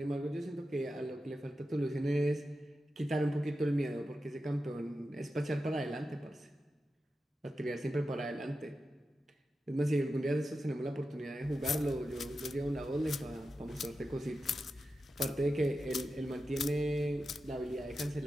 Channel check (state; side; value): normal; both; correlation 0.91